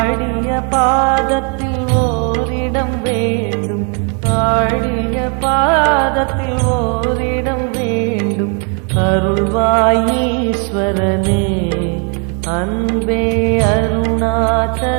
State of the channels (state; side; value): quieter; left; 38.9 dB